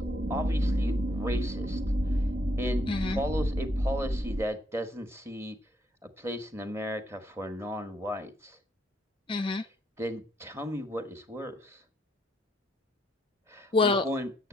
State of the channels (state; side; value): normal; both; correlation 0.73